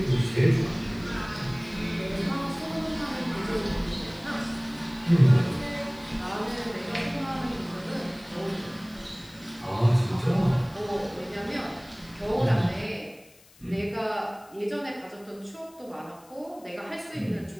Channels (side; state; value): left; noise; hiss, 26 dB below the sound